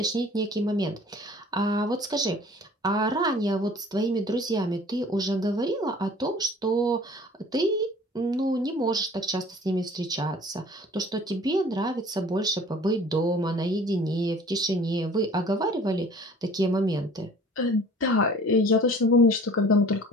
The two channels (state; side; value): normal; both; correlation 0.48